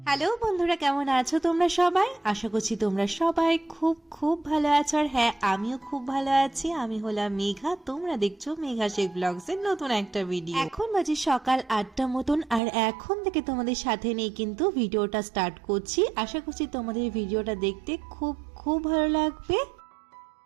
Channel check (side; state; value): left; drops out; at 12.6 s